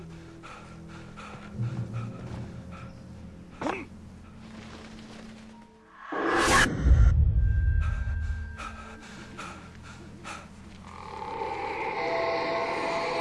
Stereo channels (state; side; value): identical; both; correlation 1.00